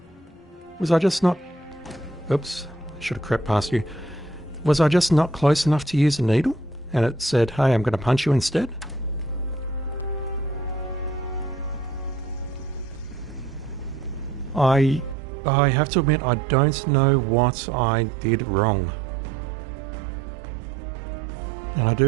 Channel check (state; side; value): drops out; left; at 15.2 s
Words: Was I just not... Oops, I should have crept past you. Was I just not close enough to use a needle? And it said, hey, I'm going to punch you instead? I have to admit, I don't know what I did wrong. And I